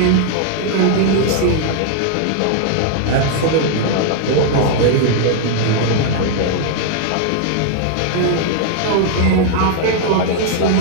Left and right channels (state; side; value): different; both; correlation 0.00